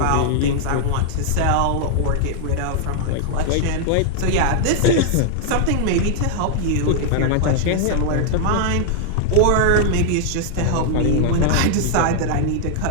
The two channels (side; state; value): both; different; correlation -0.01